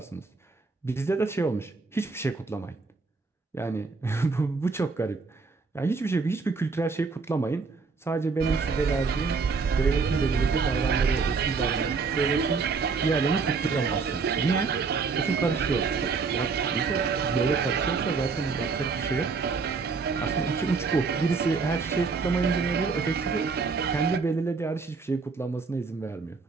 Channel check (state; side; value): quieter; left; 4.7 dB